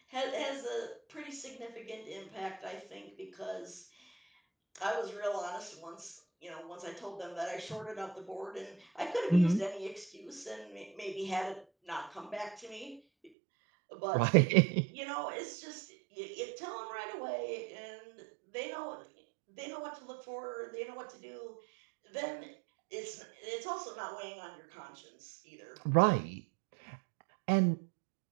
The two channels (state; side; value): drops out; left; at 13.3 s